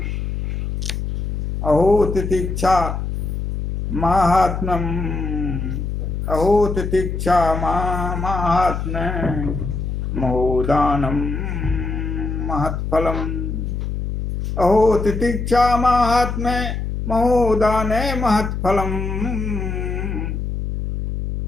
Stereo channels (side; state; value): left; noise; hum, 3 dB below the sound